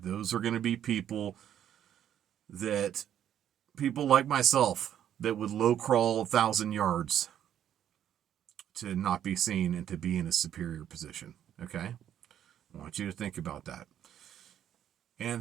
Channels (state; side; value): quieter; left; 10.3 dB